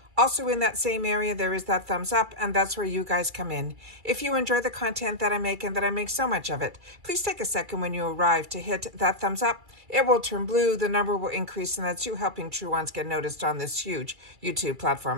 Also in that same area, there is that thumbs up, and that's where you guys come in. If you enjoy the content that I make and that I make so much of it, please take a second when you arrive to hit that thumbs up. It will turn blue, the number will increase, and that's you helping True Ones get noticed on this huge YouTube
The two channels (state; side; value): late; left; 2.3 ms